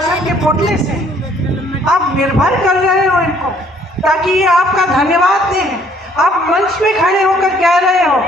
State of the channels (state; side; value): normal; both; correlation 0.61